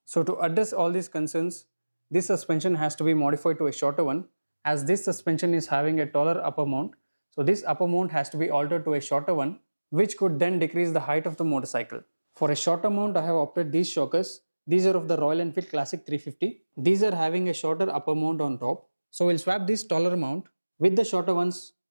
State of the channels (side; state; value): both; inverted; correlation -1.00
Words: So to address all these concerns, this suspension has to be modified to a shorter one, as this suspension is having a taller upper mount. So this upper mount has to be altered to a shorter one, which could then decrease the height of the motorcycle. For a shorter mount, I have opted these shockers. These are of the Royal Enfield Classic 350. These are having a shorter upper mount on top. So we'll swap this taller mount with the shorter ones